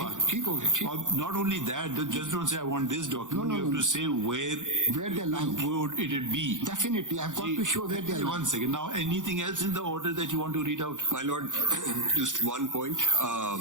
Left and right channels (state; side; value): late; left; 0.87 ms